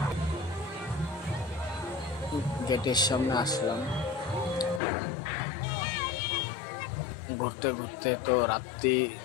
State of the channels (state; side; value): drops out; right; at 4.8 s